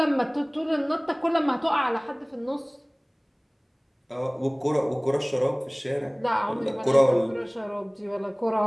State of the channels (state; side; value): identical; both; correlation 1.00